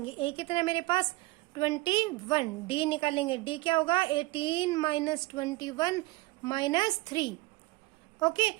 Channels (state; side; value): quieter; left; 21.4 dB